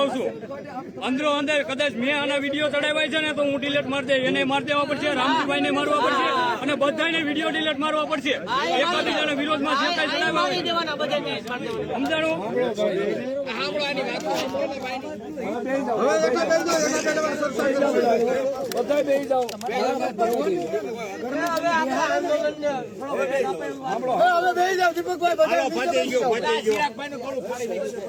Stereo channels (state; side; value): identical; both; correlation 1.00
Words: છું અંદરો અંદર કદાચ મેં આના વિડીયો ચડાવ્યા છે ને તો હું ડિલીટ મારી દે, એને મારી દેવા પડશે, રામજીભાઈ ને મારવા પડશે અને બધાને વિડીયો ડિલીટ મારવા પડશે. એકાબીજાના વિરોધમાં જે કઈ ચડાવ્યા સમજાણું.